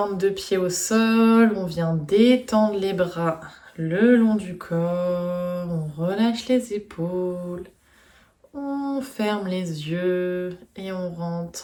de pied au sol, on vient détendre les bras le long du corps, on relâche les épaules, on ferme les yeux et on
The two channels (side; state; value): both; identical; correlation 1.00